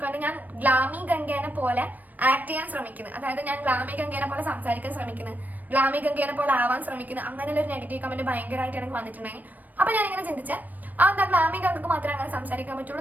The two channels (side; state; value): left; late; 0.084 ms